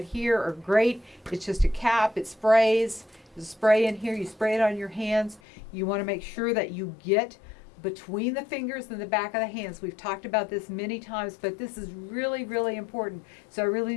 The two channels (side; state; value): right; drops out; at 5.4 s